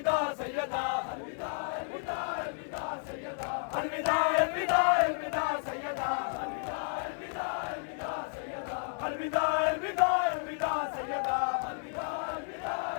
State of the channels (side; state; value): right; silent; 56 dB below the other